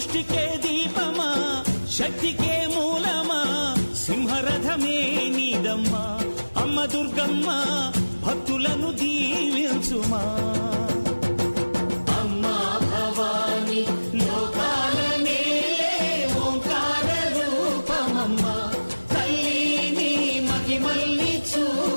సృష్టికే దీపమా శక్తికే మూలమా సింహరథమే నీదమ్మా అమ్మ దుర్గమ్మ భక్తులను దీవించుమా అమ్మా భవాని లోకాల నేలే ఓంకార రూపమమ్మా తల్లిని మహిమల్ని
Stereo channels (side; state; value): both; inverted; correlation -1.00